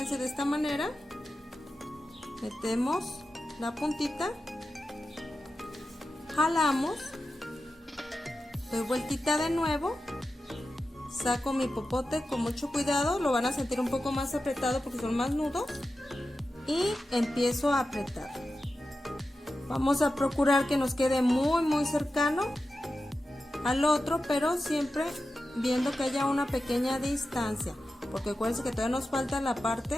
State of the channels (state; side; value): normal; both; correlation 0.92